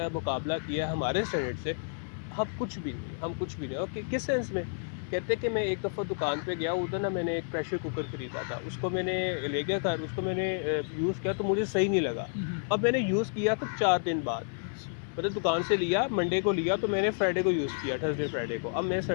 مقابلہ کیا ہے ہمارے اسٹینڈرڈ سے، ہم کچھ بھی نہیں۔ اور کس سینس میں؟ کہتے کہ میں ایک دفعہ دکان پہ گیا، ادھر نا میں نے ایک پریشر کوکر خریدا تھا، اس کو میں نے لے گیا گھر، اس کو میں نے یوز کیا تو مجھے صحیح نہیں لگا۔ اب میں نے یوز کیا تو 4 دن بعد، مطلب دکان سے لیا، منڈے کو لیا تو میں نے فرائیڈے کو یوز کیا، تھرسڈے فرائیڈے کو۔ اب میں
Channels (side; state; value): right; silent; 58 dB below the other